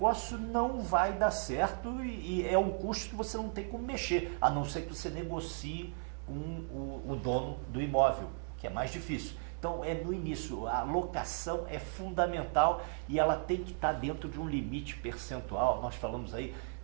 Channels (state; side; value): silent; left; 54 dB below the other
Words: não vai dar certo e é um custo que você não tem como mexer, a não ser que você negocie com o dono do imóvel, que é mais difícil. Então, no início, a locação é fundamental e ela tem que estar dentro de um limite percentual. Nós falamos aí,